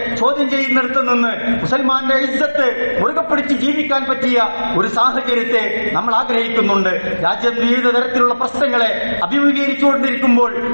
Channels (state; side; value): inverted; both; correlation -1.00